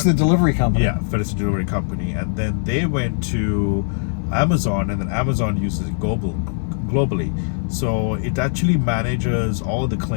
the delivery company. Yeah, FedEx the delivery company, and then they went to Amazon, and then Amazon uses it globally. So it actually manages all the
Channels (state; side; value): silent; right; 56 dB below the other